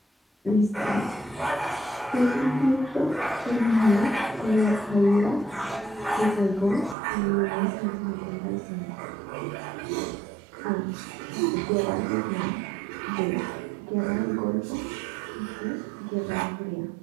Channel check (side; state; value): left; drops out; at 7.0 s